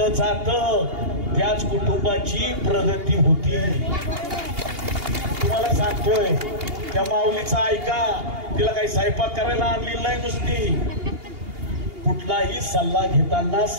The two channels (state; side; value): late; left; 2.8 ms